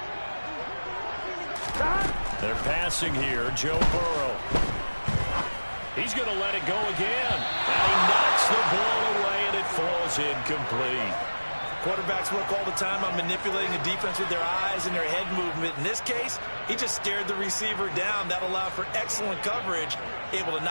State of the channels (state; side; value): inverted; both; correlation -1.00